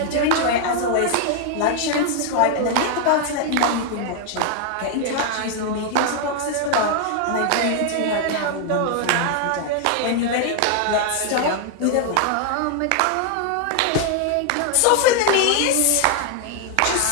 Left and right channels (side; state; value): both; different; correlation 0.00